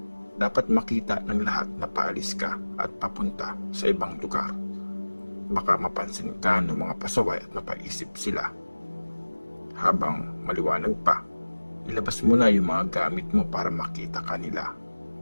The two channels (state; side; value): inverted; both; correlation -1.00